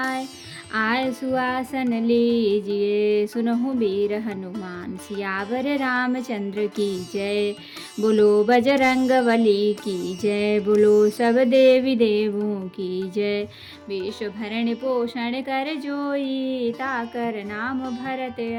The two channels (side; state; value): both; identical; correlation 1.00